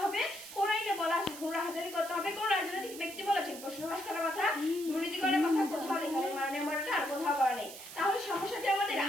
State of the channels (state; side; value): noise; right; hiss, 13 dB below the sound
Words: হবে? কোন আইনে বলা আছে ঘুষ হাজারি করতে হবে? কোন রাজনৈতিক ব্যক্তি বলেছেন প্রশ্নবাস করার কথা, দুর্নীতি করার কথা কোথাও লেখা নেই, মাননীয় মডেলটা আর কোথাও বলা নেই। তাহলে সমস্যাটি আমাদের